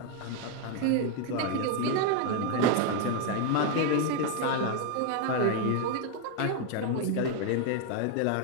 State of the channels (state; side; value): different; both; correlation 0.01